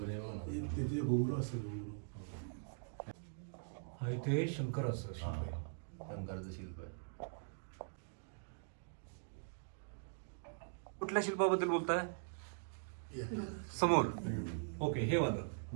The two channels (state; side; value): silent; left; digital silence